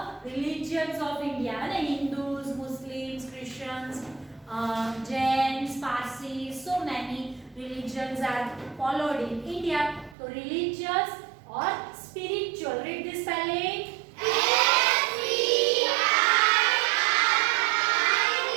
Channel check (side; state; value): left; drops out; at 10.2 s